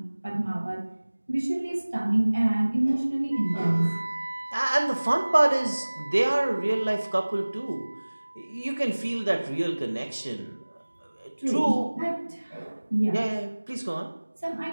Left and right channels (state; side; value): inverted; both; correlation -1.00